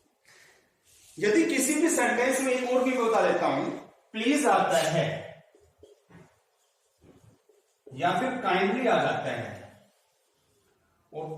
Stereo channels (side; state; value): both; identical; correlation 1.00